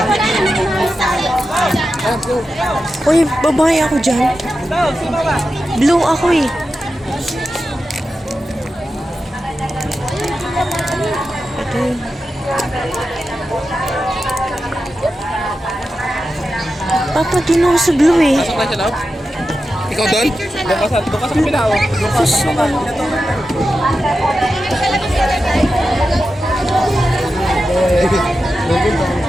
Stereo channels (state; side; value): normal; both; correlation 0.91